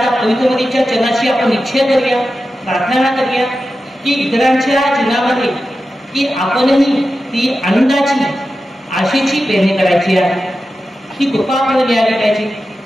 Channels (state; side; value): normal; both; correlation 0.92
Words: पवित्रमतीच्या चरणाशी आपण निश्चय करूया, प्रार्थना करूया की इतरांच्या जीवनामध्ये की आपणही ती आनंदाची आशेची पेरणी करायची आहे. ही कृपा आपल्याला मिळाली